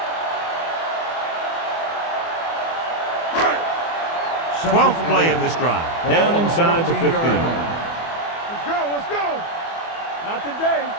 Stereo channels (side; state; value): right; late; 24 ms